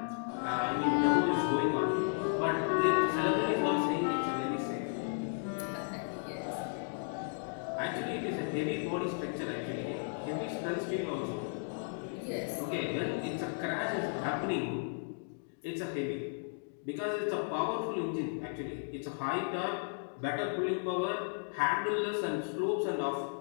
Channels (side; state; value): right; silent; digital silence